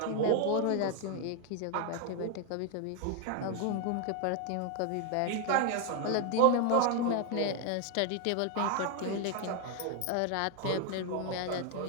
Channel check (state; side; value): different; both; correlation 0.01